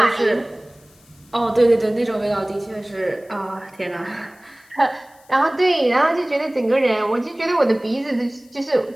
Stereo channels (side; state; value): left; noise; hiss, 30 dB below the sound